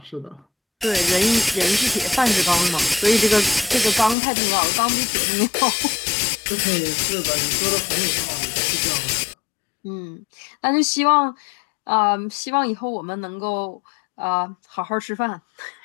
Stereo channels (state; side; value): drops out; right; at 4.2 s